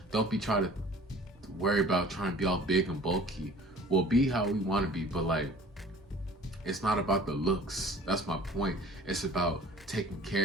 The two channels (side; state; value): both; normal; correlation 0.47